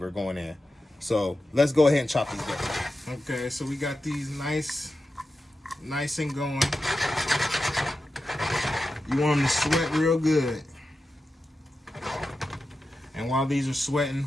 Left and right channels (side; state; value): both; normal; correlation 0.91